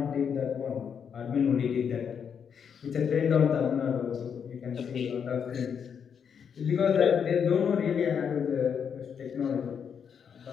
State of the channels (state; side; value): quieter; right; 7.3 dB